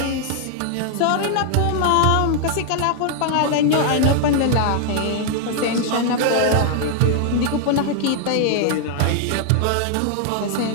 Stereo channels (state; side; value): different; both; correlation 0.00